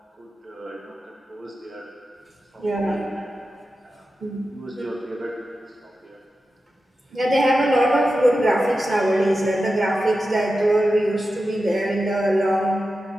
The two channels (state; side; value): normal; both; correlation 0.92